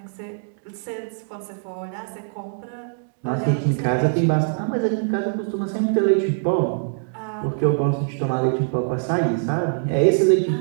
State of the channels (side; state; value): left; silent; digital silence